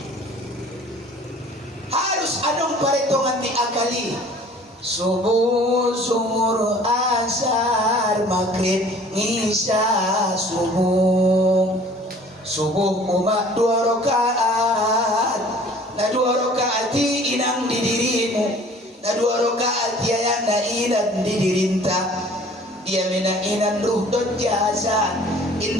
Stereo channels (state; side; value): normal; both; correlation 0.50